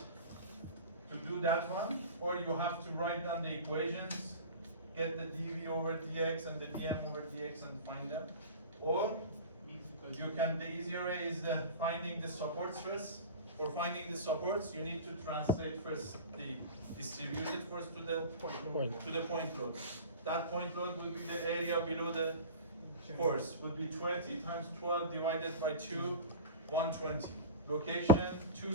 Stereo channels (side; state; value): both; inverted; correlation -0.33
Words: to do that one, or you have to write down the equations, get the dv over dx and the dm over dx and find them, Or you can, the easier way is finding the support stress. For finding the supports, you need to translate first the distributed force to the point load. That point load will be the area below the force, would be 20 times 12 divided by 2, 120. Location,